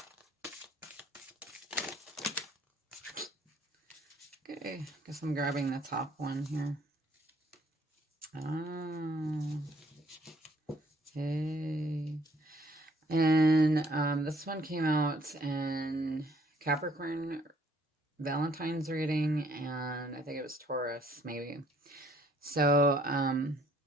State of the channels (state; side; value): normal; both; correlation 0.62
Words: Okay. Guess I'm grabbing the top one here. Oh. Okay. And this one came out in Capricorn Valentine's reading, and I think it was Taurus, maybe. So